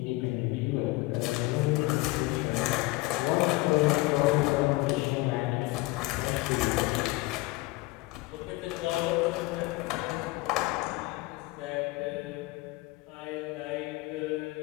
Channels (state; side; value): quieter; right; 21.1 dB